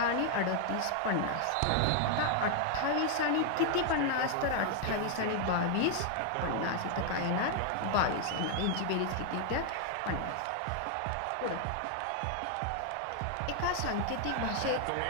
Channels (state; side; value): different; both; correlation 0.00